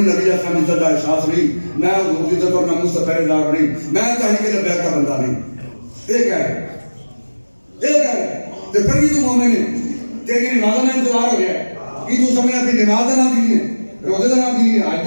نبی اسلام کی عزت کا احساس نہیں میں حضور کی عزت اور ناموس کا پہرے دار نہیں میں تحریک لبیک کا بندہ نہیں یہ کہہ رہے تو پھر بھی تو مومن ہے تیری نماز کا انتظار ہو گیا ہے کہ تو سمجھنا کہ نماز کا نہ دین ہے روزے کا نہ دین ہے حج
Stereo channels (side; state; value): both; inverted; correlation -1.00